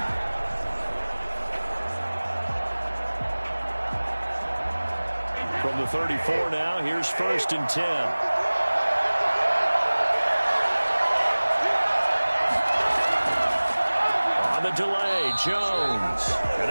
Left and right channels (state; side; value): inverted; both; correlation -1.00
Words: From the 34 now, here's 1st and 10. On the delay, Jones. And